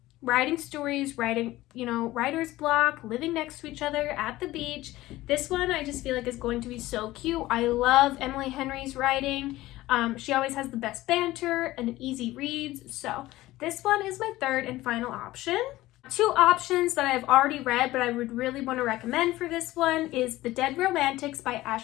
writing stories, you know, writer's block, living next to each other at the beach. This one I just feel like is going to be so cute. I love Emily Henry's writing. She always has the best banter and easy reads. So this one is my third and final option. Two options that I've already read, but I would really want to recommend for this one is The Dead Romantics by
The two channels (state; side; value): quieter; right; 17.1 dB